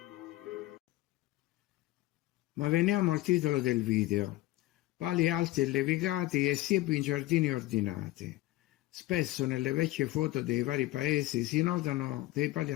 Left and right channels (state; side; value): quieter; right; 17.4 dB